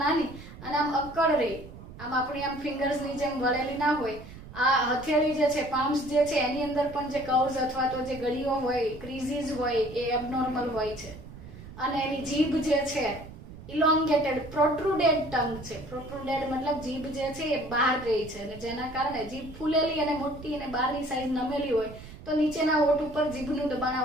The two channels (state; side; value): noise; right; rumble, 15 dB below the sound